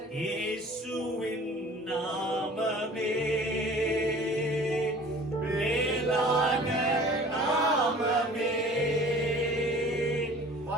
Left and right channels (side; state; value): both; normal; correlation 0.47